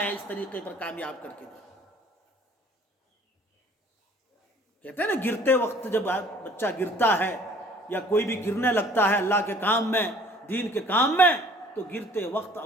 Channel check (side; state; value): both; normal; correlation 0.53